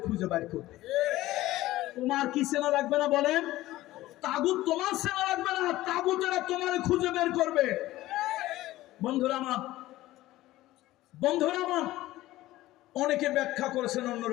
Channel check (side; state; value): right; quieter; 16.5 dB